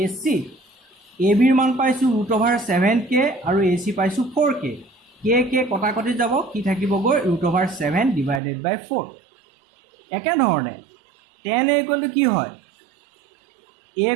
AC ABৰ মান পাইছোঁ √7K আৰু AC পাইছোঁ 4K K কটাকটি যাব কি থাকিবগৈ √7 ডিভাইডেড বাই 4 একেধৰণে tan a ইকুৱেল টু কি হয় a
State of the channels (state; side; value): drops out; left; at 8.4 s